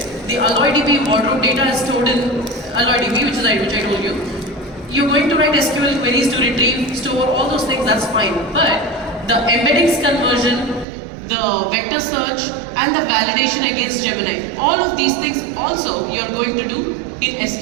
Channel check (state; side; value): drops out; left; at 10.9 s